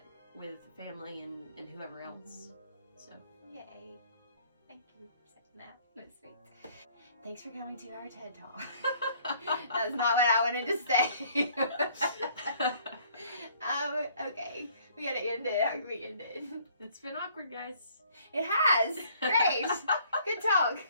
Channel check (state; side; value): inverted; both; correlation -0.60